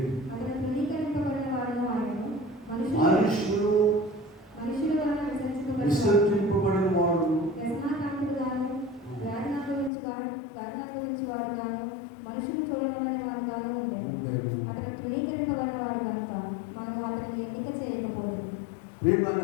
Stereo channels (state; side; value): drops out; right; at 9.9 s